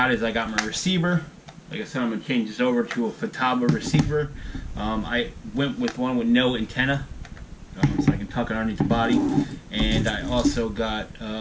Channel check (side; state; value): both; identical; correlation 1.00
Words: is I got my receiver. Like I said, I'm gonna change this over to a Futaba receiver. I went with one with no antenna. So I can tuck it underneath the body. And I also got,